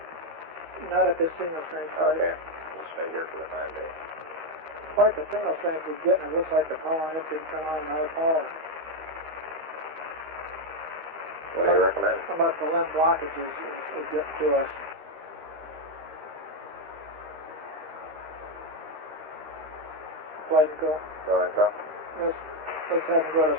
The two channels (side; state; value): left; late; 13 ms